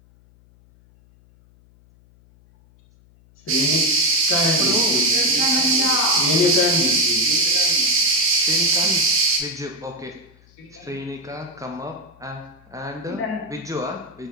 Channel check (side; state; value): left; noise; hum, 29 dB below the sound